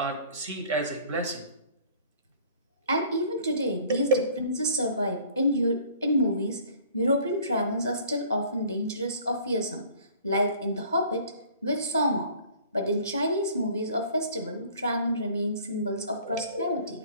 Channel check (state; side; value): inverted; both; correlation -0.52